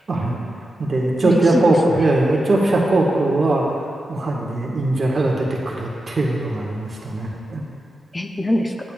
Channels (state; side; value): normal; both; correlation 0.90